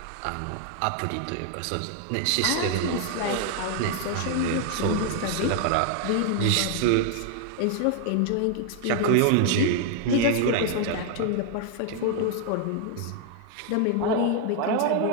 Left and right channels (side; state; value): both; different; correlation 0.00